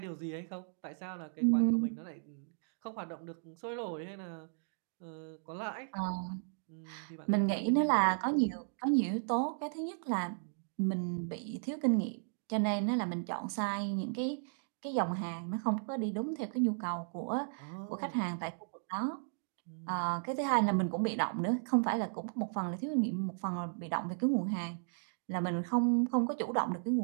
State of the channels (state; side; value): silent; left; digital silence